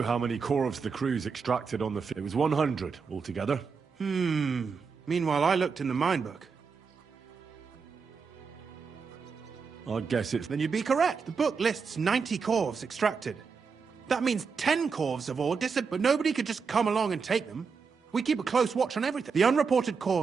how many corvs the crew's extracted on the It was 100 altogether. Meanwhile, I looked in the mine book. I guess it's... Then you'd be correct. The book lists 90 corvs extracted. That means 10 corvs of ore disappeared, but nobody could just come along and take them. We keep a close watch on everything. The unreported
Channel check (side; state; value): left; quieter; 5.5 dB